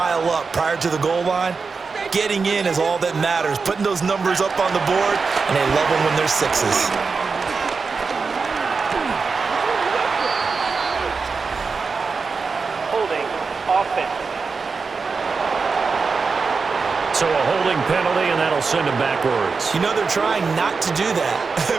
up prior to the goal line, getting in is all that matters. Putting those numbers up on the board, and they love them when they're 6s. Holding offense. So a holding penalty, and that'll send him backwards. They're trying not to do that. I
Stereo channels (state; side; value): quieter; left; 4.8 dB